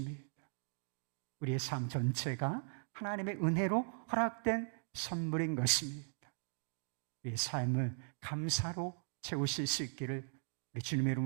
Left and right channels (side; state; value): left; silent; digital silence